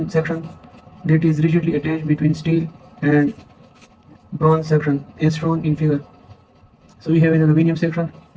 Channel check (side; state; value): both; identical; correlation 1.00